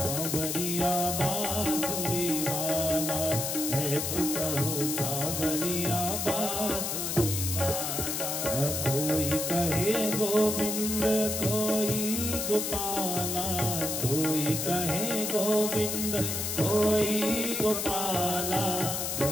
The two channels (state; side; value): noise; left; hiss, 2 dB below the sound